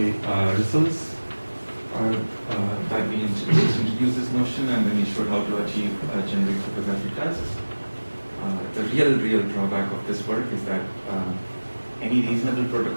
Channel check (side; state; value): both; inverted; correlation -1.00